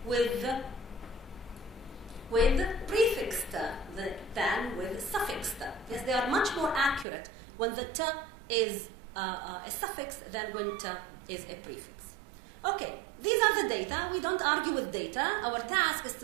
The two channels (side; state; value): left; drops out; at 7.1 s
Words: with prefix t than with suffix t. Yes, they are much more accurate when the t is a suffix than when t is a prefix. Okay, these are the data. We don't argue with data. Our task is